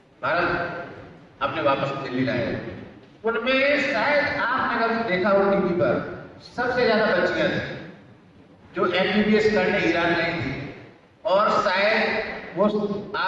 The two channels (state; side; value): identical; both; correlation 1.00